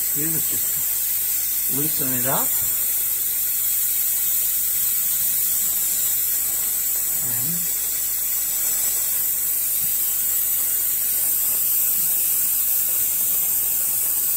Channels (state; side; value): noise; right; hum, 23 dB below the sound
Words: do is just loosen it up. And